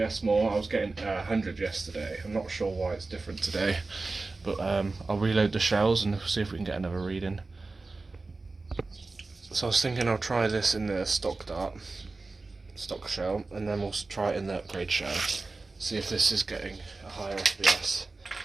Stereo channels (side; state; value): left; quieter; 3.6 dB